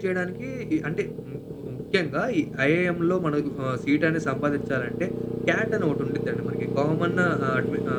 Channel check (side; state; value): both; identical; correlation 1.00